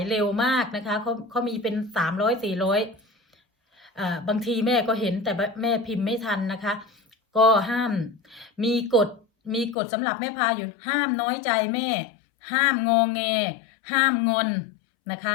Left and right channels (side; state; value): right; drops out; at 9.8 s